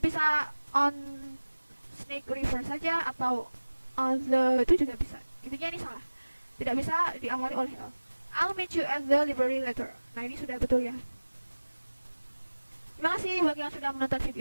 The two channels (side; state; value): both; inverted; correlation -1.00